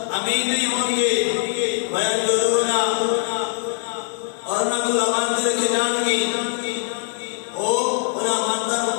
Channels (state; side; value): silent; right; 64 dB below the other